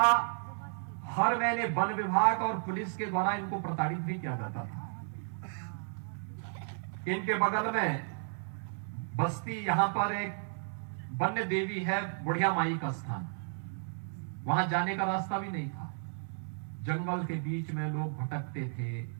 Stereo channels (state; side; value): silent; left; digital silence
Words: हर महीने वन विभाग और पुलिस के द्वारा इनको प्रताड़ित भी किया जाता था। इनके बगल में बस्ती, यहां पर एक वन्य देवी है, बुढ़िया माई का स्थान, वहां जाने का रास्ता भी नहीं था। जंगल के बीच में लोग भटकते थे,